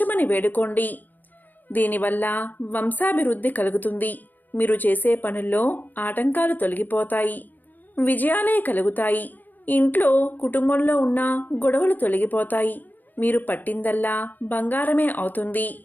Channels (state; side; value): late; right; 0.085 ms